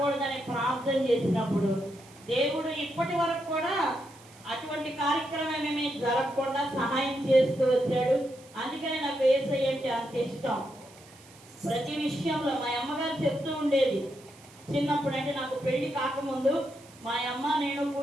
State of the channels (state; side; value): noise; right; hiss, 24 dB below the sound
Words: ప్రార్థన చేసినప్పుడు దేవుడు ఇప్పటి వరకు కూడా అటువంటి కార్యక్రమం ఏమీ జరగకుండా సహాయం చేస్తూ వచ్చాడు. అందుకనే నాకు యేసయ్య అంటే అంత ఇష్టం. ప్రతి విషయంలో మా అమ్మగారు చెప్తూ ఉండేది చిన్నప్పుడు, అంటే నాకు పెళ్లి కాకముందు మా అమ్మ నేను